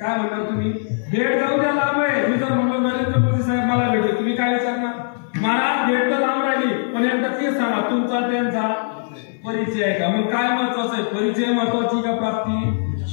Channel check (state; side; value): silent; right; 59 dB below the other